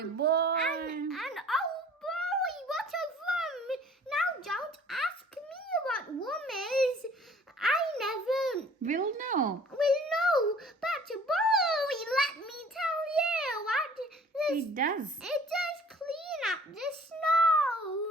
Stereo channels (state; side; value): normal; both; correlation 0.51